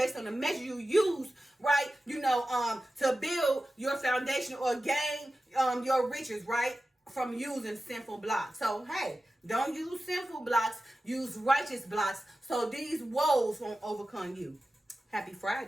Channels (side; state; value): both; normal; correlation 0.94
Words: on the measure you use, right? To build your foundation or gain your riches, right? From using sinful blocks. So hey, don't use sinful blocks, use righteous blocks, so these woes won't overcome you. Happy